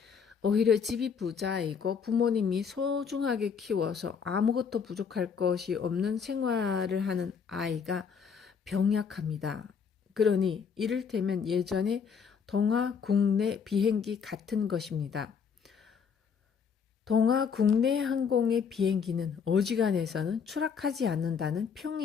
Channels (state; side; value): quieter; right; 6.3 dB